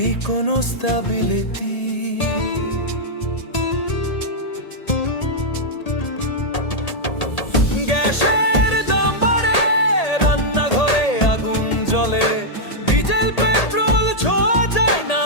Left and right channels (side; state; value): right; late; 1.8 ms